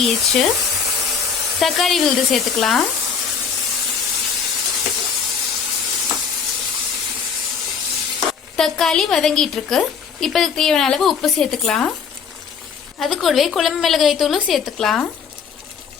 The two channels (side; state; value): right; quieter; 6.3 dB